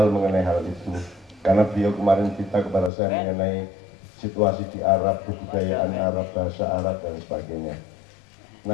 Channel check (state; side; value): drops out; right; at 2.9 s